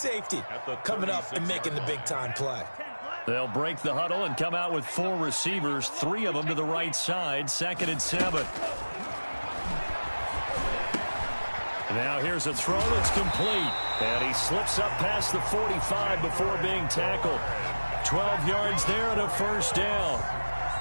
coming up and making the big-time play? They'll break the huddle and come out with 4 receivers, 3 of them to the right side, 2nd and 7. Now here's a throw that's complete. And he slips up past the 45 before being tackled. 12 yards there and a 1st down.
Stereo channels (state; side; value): inverted; both; correlation -1.00